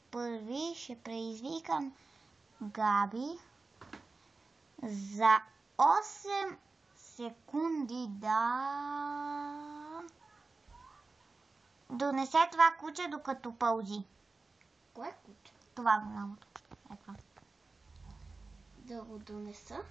първи, ще предизвикам Габи за 8 секунди да донесе това куче докато пълзи. Кое куче? Това голямото. Ето. Да го донеса?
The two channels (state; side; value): quieter; left; 3.8 dB